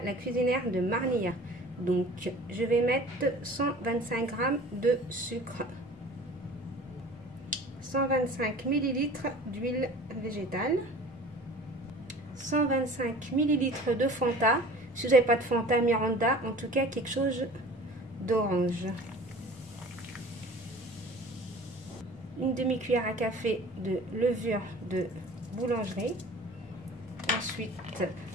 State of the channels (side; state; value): both; normal; correlation 0.43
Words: la cuisinière de Marnia. Donc je vais mettre 125 g de sucre, 125 ml d'huile végétale, 125 ml de Fanta, si vous n'avez pas de Fanta Miranda, en tout cas quelque chose d'orange, une demi-cuillère à café de levure de boulangerie, ensuite